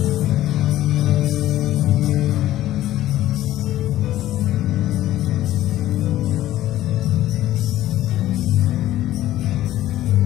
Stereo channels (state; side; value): quieter; right; 14.1 dB